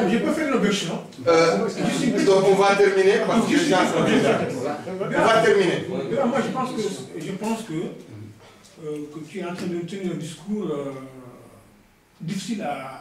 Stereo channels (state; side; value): identical; both; correlation 1.00